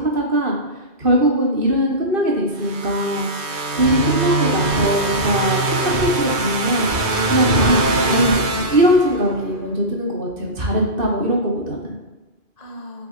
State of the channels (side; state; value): left; late; 2.5 ms